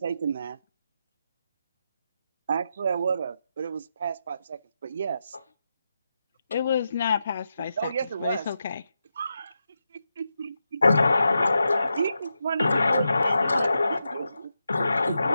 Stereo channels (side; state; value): both; inverted; correlation -0.87